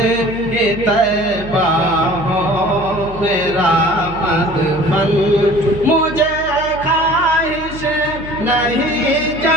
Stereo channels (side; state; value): right; noise; hum, 14 dB below the sound